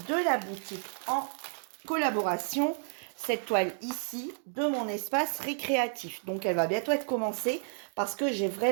de la boutique en collaboration, cette toile ici de mon espace récréatif. Donc elle va bientôt être commencée parce que j'ai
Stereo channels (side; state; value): left; silent; 57 dB below the other